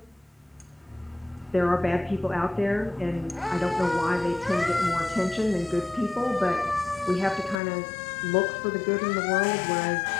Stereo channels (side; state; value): right; drops out; at 7.6 s